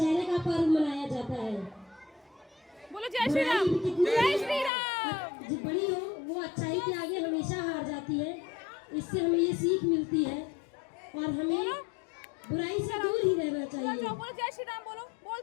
का पर्व मनाया जाता है। बोलो जय श्री राम। बुराई भी कितनी जय श्री राम। जो बड़ी हो वो अच्छाई के आगे हमेशा हार जाती है। इससे हमें ये सीख मिलती है और हमें बुराई से दूर ही रहना चाहिए। बोलो जय श्री राम। बोलो,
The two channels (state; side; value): drops out; right; at 4.7 s